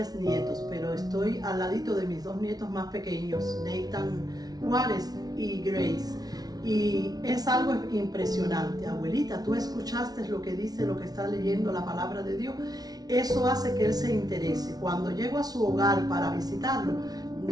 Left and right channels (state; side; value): late; left; 0.19 ms